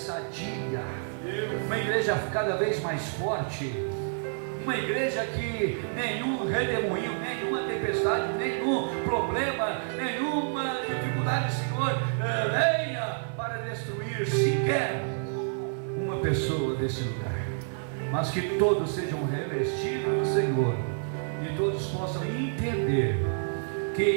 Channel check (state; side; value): silent; left; 55 dB below the other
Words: uma igreja cada vez mais forte, uma igreja que nenhum redemoinho, nenhuma tempestade, nenhum problema, nenhuma dificuldade, Senhor, venha para destruir sequer uma pessoa desse lugar, mas que todos sejam revestidos, Senhor, e todos possam entender que